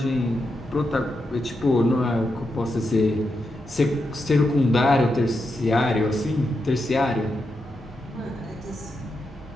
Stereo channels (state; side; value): normal; both; correlation 0.85